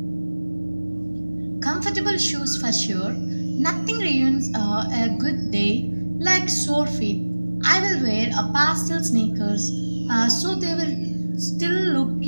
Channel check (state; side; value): inverted; both; correlation -1.00